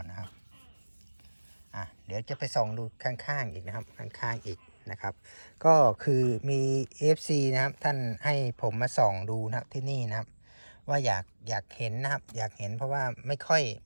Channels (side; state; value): both; inverted; correlation -1.00